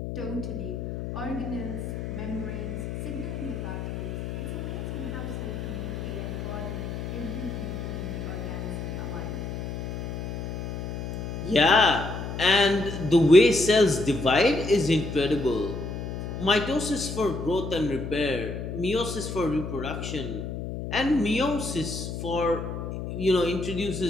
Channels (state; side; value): noise; left; hum, 5 dB below the sound